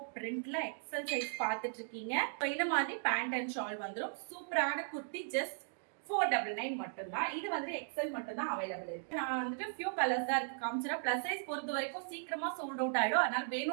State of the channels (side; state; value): left; silent; digital silence